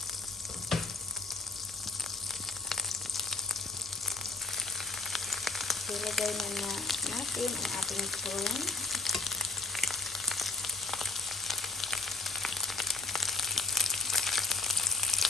So, lagay na natin ang ating prawn.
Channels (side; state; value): right; quieter; 3.5 dB